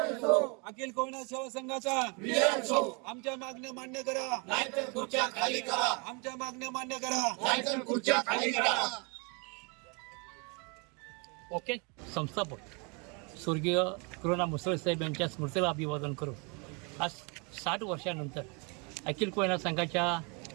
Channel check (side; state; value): left; quieter; 32.6 dB